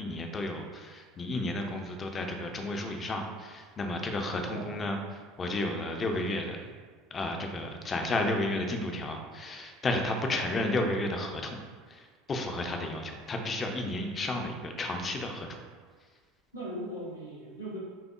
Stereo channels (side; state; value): both; normal; correlation 0.60